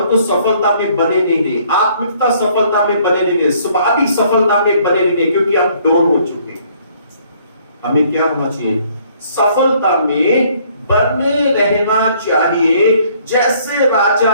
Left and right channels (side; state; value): both; inverted; correlation -0.62